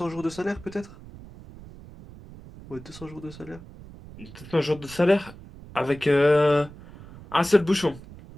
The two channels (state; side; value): noise; right; rumble, 18 dB below the sound